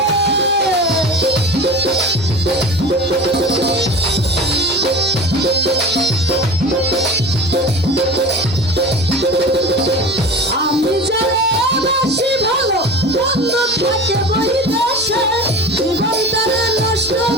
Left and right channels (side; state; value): both; normal; correlation 0.34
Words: আমি জানে বেশি ভালো বন্ধু থাকে বৈদেশে, জীবন করে নষ্ট